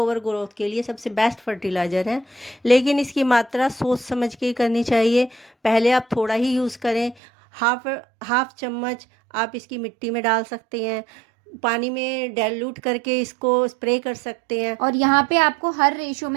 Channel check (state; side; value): drops out; left; at 7.2 s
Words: ग्रोथ के लिए सबसे बेस्ट फर्टिलाइज़र है। लेकिन इसकी मात्रा सोच समझ के करनी चाहिए। पहले आप थोड़ा ही यूज़ करें, हाफ चम्मच आप इसकी मिट्टी में डाल सकते हैं, पानी में डाइल्यूट करके इसको स्प्रे कर सकते हैं। और यहाँ पे आपको हर रेशो